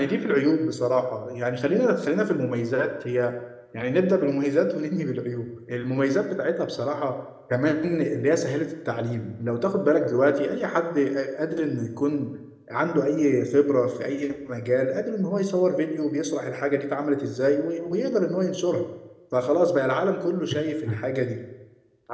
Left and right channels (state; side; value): identical; both; correlation 1.00